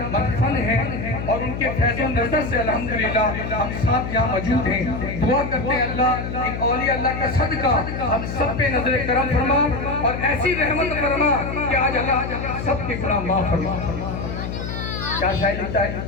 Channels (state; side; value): noise; left; hum, 5 dB below the sound